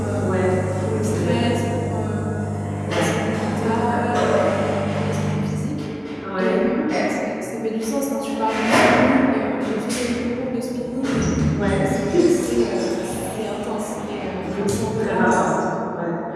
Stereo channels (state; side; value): identical; both; correlation 1.00